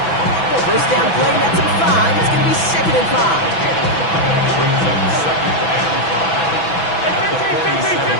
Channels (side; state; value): right; late; 6.0 ms